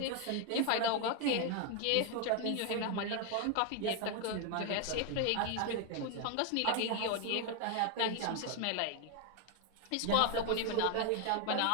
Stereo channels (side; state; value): both; different; correlation 0.01